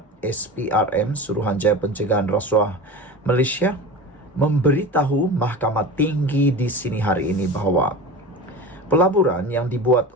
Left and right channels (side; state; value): both; normal; correlation 0.31